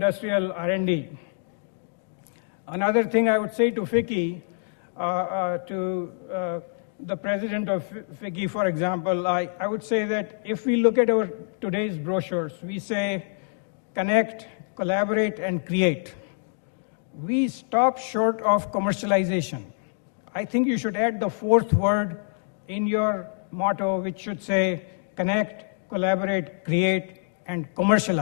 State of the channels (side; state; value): right; silent; digital silence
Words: R&D. Another thing I would say to FICCI, to the president of FICCI, for example, I would say that if we look at our today's brochures, we say connect, collaborate, and create. We stop short of commercialization. I think you should add the 4th word in your motto, which should say connect, collaborate, create, and